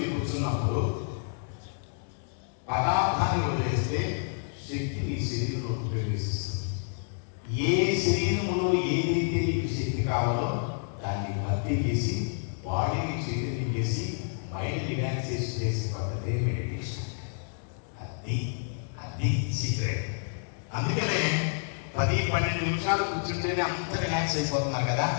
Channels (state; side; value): silent; right; digital silence